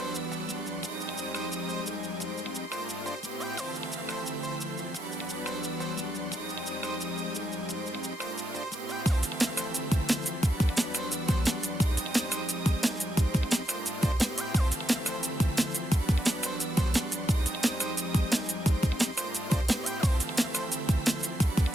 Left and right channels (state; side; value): normal; both; correlation 0.79